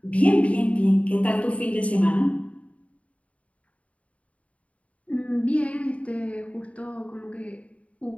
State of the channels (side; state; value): right; late; 0.065 ms